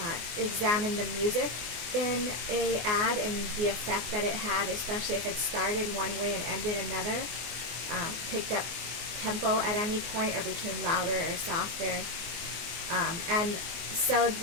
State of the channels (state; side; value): late; left; 24 ms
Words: examined the music in a ad and the effect that it had, especially if it started one way and ended another, picked up tempo at any point, or became louder or softer. And so